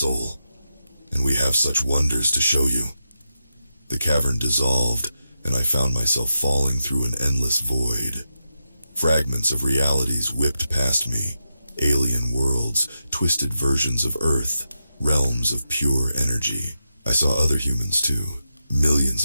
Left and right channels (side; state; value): both; inverted; correlation -0.87